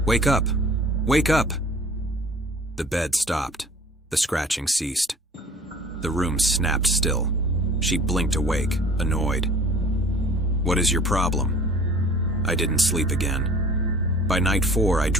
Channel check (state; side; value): normal; both; correlation 0.48